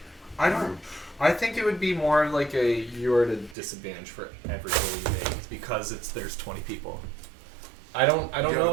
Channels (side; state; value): left; drops out; at 3.6 s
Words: I think it would be more like you're at a disadvantage for every roll you make because there's 20 people. I don't Yeah, know but